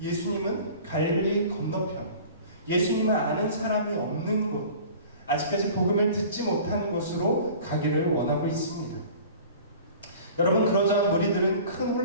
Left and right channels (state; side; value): inverted; both; correlation -0.43